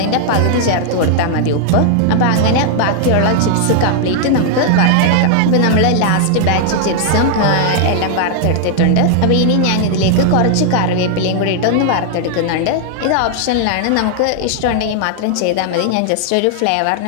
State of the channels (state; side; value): different; both; correlation 0.00